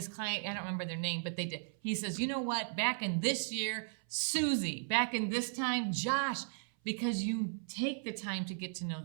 client, I don't remember their name, but they did. He says, you know what, back in this year, Susie, back in this time, Josh, because you take the time to get to know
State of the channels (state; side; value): silent; left; 54 dB below the other